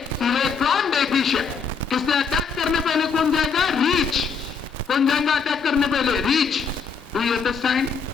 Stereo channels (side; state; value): right; quieter; 5.5 dB